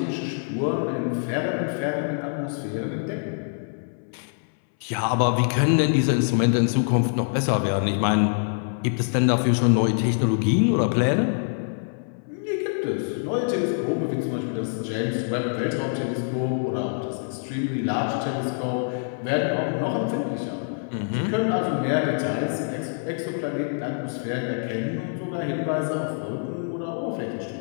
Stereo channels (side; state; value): right; silent; 62 dB below the other